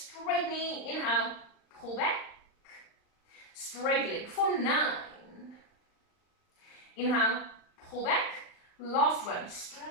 knee. Inhale, pull back, straight leg for 9. Inhale, pull back, last one,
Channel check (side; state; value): right; late; 39 ms